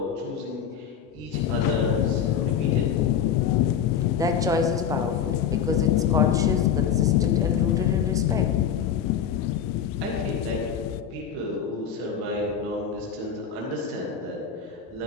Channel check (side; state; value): right; quieter; 7.9 dB